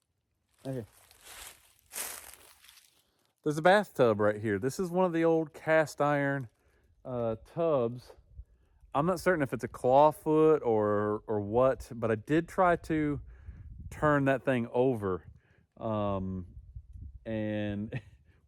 Okay. There's a bathtub right here. This is one of the old cast iron tubs. I'm not certain if it's a clawfoot or what, but I did try to turn that thing over. And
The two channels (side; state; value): both; identical; correlation 1.00